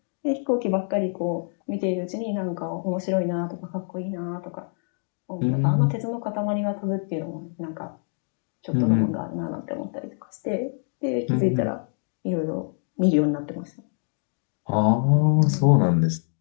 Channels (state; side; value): silent; right; 61 dB below the other